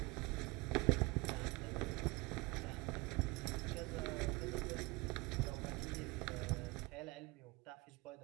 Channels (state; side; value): quieter; left; 24.0 dB